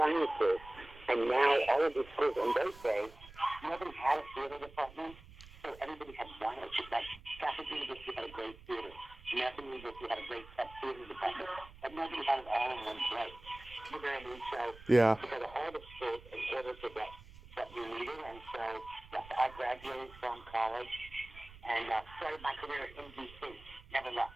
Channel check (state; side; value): noise; right; rumble, 19 dB below the sound